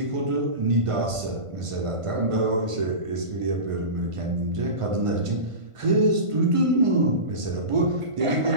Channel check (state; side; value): late; left; 1.5 ms